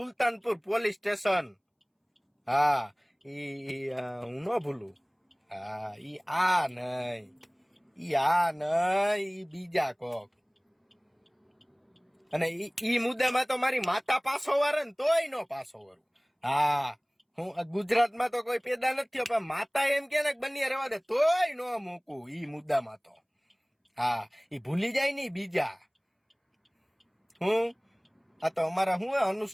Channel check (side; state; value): both; identical; correlation 1.00